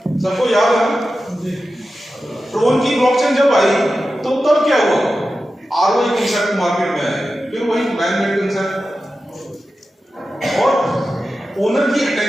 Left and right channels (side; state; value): both; normal; correlation 0.92